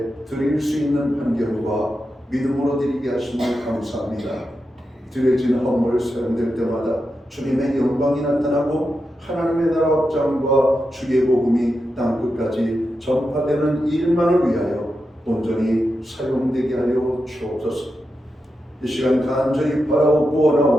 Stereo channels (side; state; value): both; normal; correlation 0.88